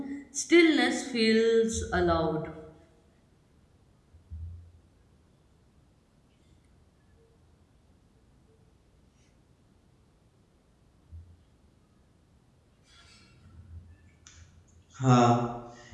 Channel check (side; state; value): both; identical; correlation 1.00